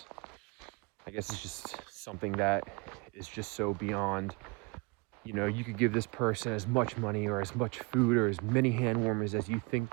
I guess it's just something that is just so beyond, you know, you could give this person as much money or as much food or as many hand warmers as you think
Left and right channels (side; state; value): left; quieter; 29.0 dB